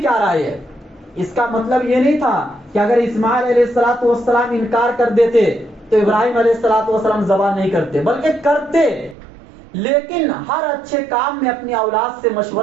رائے ہے؟ اس کا مطلب یہ نہیں تھا کہ اگر اسماعیل علیہ السلام انکار کر دیتے تو ابراہیم علیہ السلام ذبح نہیں کرتے، بلکہ کرتے، لیکن ہر اچھے کام میں اپنی اولاد سے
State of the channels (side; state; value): left; drops out; at 9.2 s